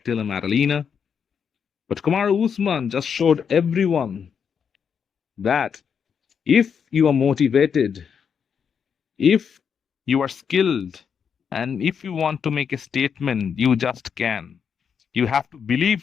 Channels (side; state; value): right; quieter; 7.0 dB